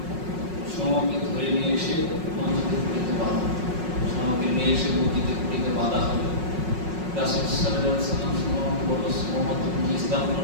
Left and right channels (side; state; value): left; late; 5.5 ms